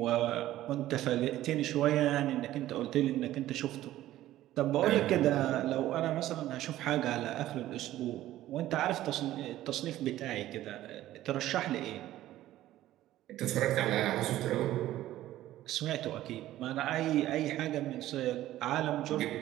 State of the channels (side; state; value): left; quieter; 14.3 dB